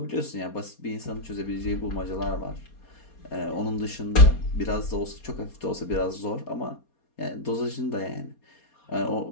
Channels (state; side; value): late; right; 4.3 ms